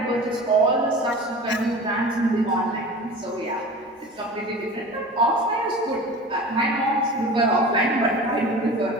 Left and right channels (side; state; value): both; normal; correlation 0.36